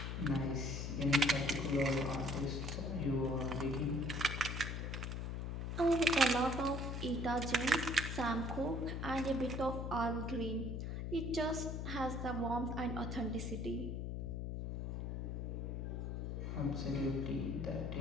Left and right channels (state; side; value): noise; left; hum, 3 dB below the sound